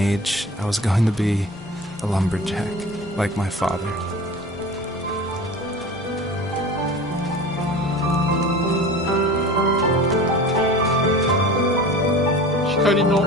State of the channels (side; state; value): both; normal; correlation 0.37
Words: I was going to be a lumberjack, like my father. 光の